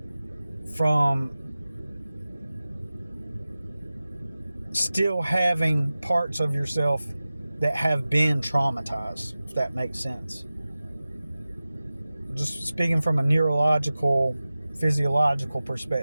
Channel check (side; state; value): both; inverted; correlation -0.96